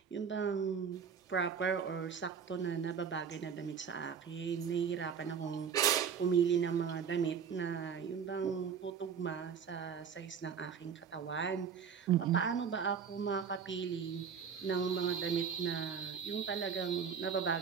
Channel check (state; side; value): quieter; left; 6.9 dB